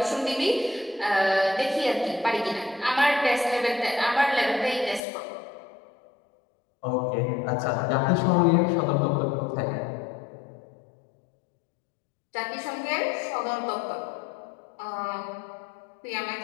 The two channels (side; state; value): right; drops out; at 5.0 s